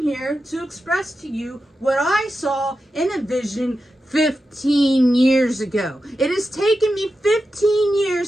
here to express to you what I saw in a vision 15 years ago. It has taken me 15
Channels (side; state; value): both; normal; correlation 0.90